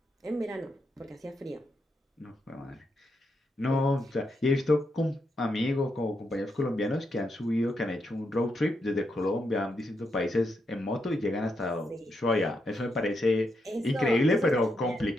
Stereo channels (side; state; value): both; normal; correlation 0.82